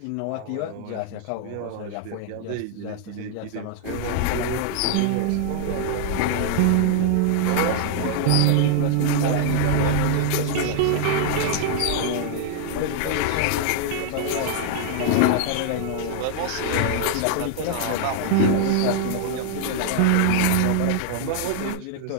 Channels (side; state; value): both; different; correlation -0.01